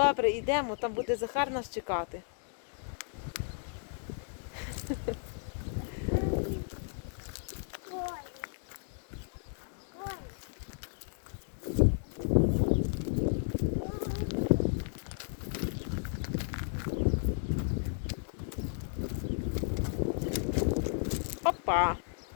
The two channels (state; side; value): silent; right; digital silence